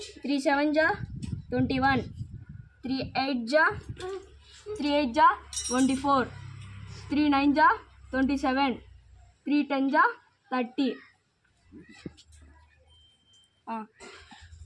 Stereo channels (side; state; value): both; identical; correlation 1.00